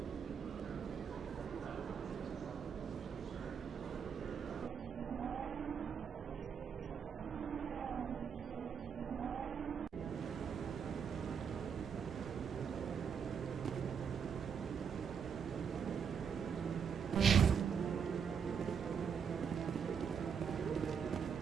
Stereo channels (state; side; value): quieter; left; 6.9 dB